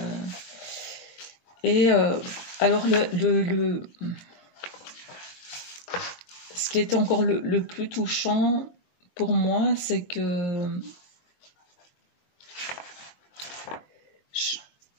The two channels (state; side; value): late; right; 22 ms